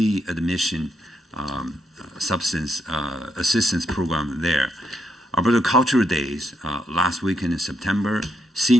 admission substance assistance program there. Alberta Cultural Days, last weekend in September,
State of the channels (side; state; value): both; normal; correlation 0.78